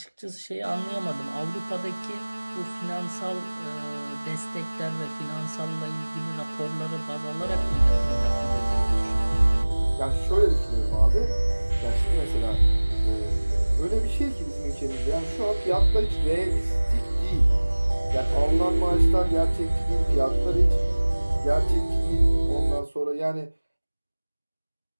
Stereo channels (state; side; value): inverted; both; correlation -1.00